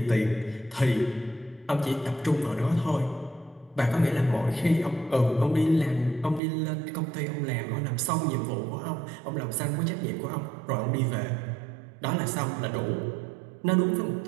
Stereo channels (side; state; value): left; drops out; at 6.4 s